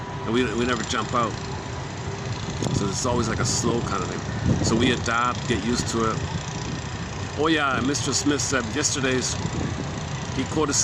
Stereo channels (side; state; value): both; identical; correlation 1.00